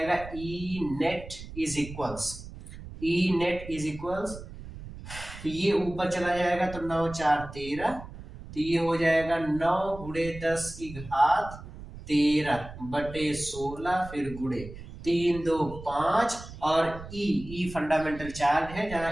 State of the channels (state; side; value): noise; right; rumble, 13 dB below the sound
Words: E नेट इज इक्वल्स, तो ये ऊपर चला जाएगा तो 9 × 4 = 13, तो ये हो जाएगा 9 × 10⁻13 बटे 16, फिर गुणे 3 2 5, और E फंडामेंटल चार्ज है